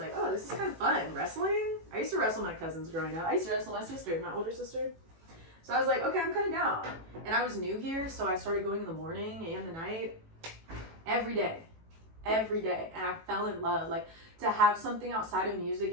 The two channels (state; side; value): late; left; 18 ms